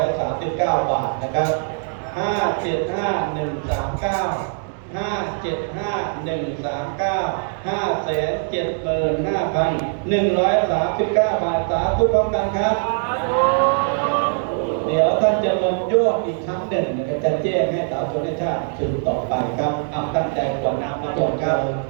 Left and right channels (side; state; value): left; silent; 65 dB below the other